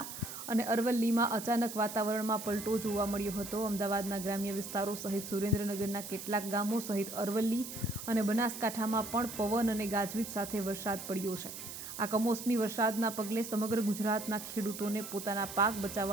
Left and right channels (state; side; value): noise; right; hiss, 9 dB below the sound